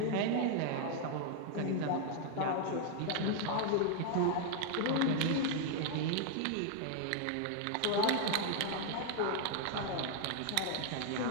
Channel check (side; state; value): both; different; correlation 0.00